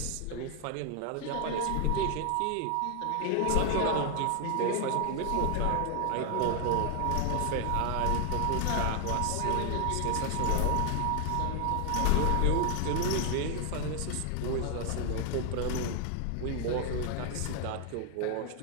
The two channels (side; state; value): both; different; correlation 0.00